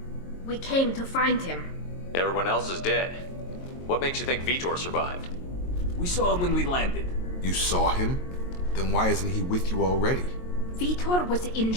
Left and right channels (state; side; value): late; right; 22 ms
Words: We came to find him. Everyone else is dead. What makes you think Vitor survived? We saw him when we landed. You saw him? Then why isn't he with you already? Vitor was